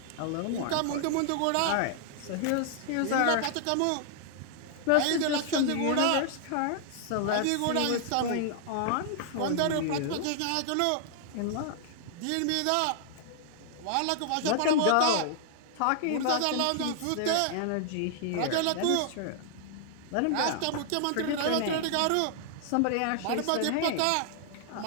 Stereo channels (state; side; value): different; both; correlation -0.01